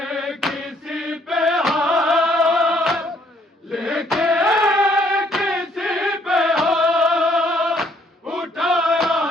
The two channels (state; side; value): normal; both; correlation 0.66